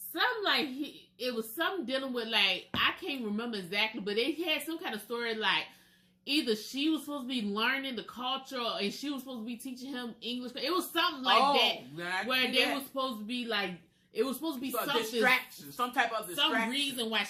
it was something dealing with like I can't remember exactly, but they had some kind of story like either she was supposed to be learning the culture and she was supposed to be teaching him English. It was something like that where they were supposed to be like. It was supposed to be something distraction, some type of distraction. Some reason why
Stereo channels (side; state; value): both; identical; correlation 1.00